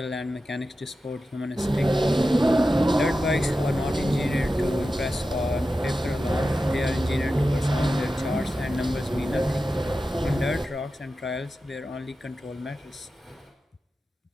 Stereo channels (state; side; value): normal; both; correlation 0.92